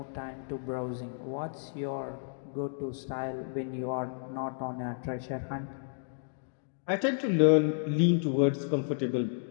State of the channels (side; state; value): right; silent; digital silence